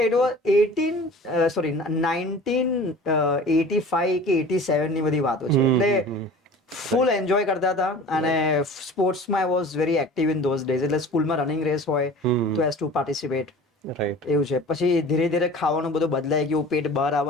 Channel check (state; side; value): normal; both; correlation 0.42